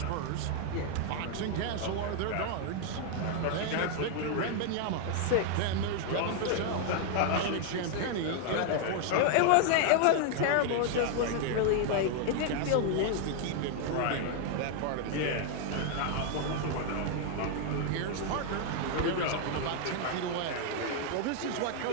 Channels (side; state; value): both; different; correlation 0.00